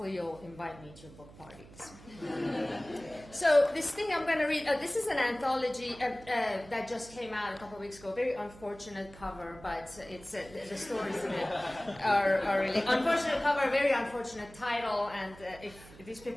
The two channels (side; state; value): right; noise; hum, 20 dB below the sound